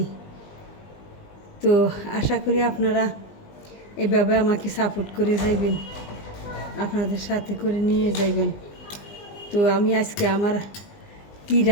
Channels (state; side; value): late; right; 20 ms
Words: তো আশা করি আপনারা এভাবে আমাকে সাপোর্ট করে যাইবেন, আপনাদের সাথে করে নিয়ে যাইবেন। তো আমি আজকে আমার কি